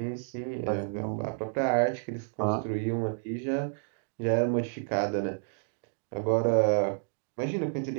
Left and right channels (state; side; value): silent; left; digital silence